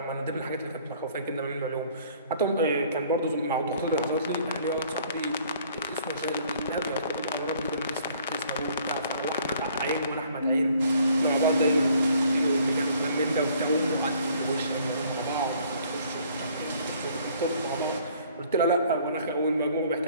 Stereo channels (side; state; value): both; inverted; correlation -0.58